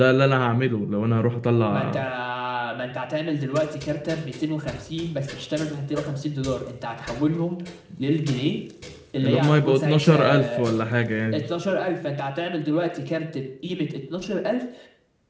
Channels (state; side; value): identical; both; correlation 1.00